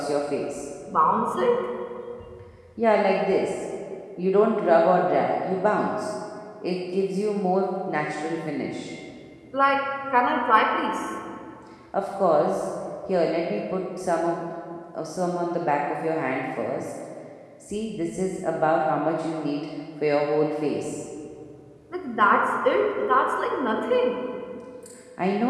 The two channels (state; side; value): identical; both; correlation 1.00